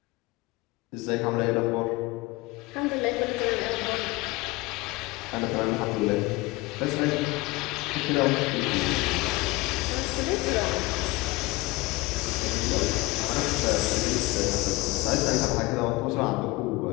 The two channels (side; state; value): right; quieter; 21.7 dB